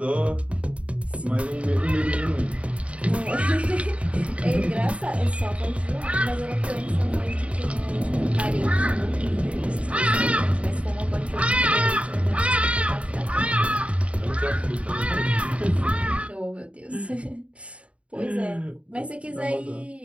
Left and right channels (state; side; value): late; left; 0.063 ms